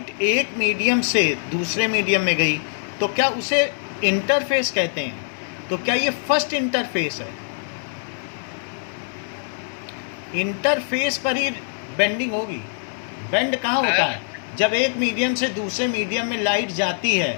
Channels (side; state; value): right; silent; 63 dB below the other